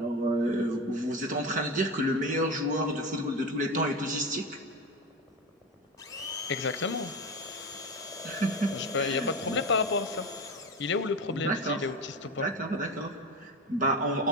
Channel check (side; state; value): both; normal; correlation 0.22